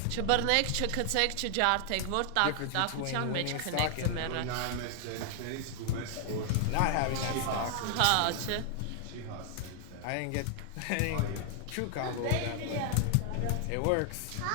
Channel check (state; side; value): different; both; correlation 0.00